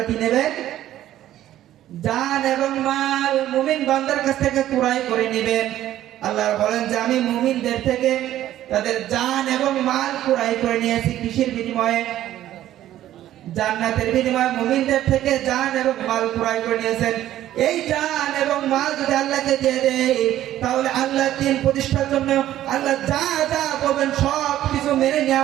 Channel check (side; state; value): left; quieter; 13.0 dB